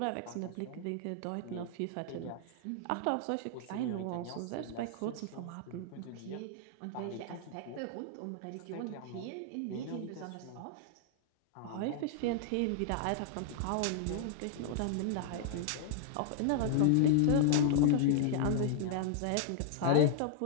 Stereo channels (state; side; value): different; both; correlation -0.01